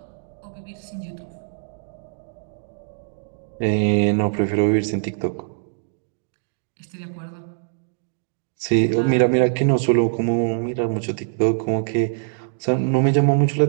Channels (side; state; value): left; silent; digital silence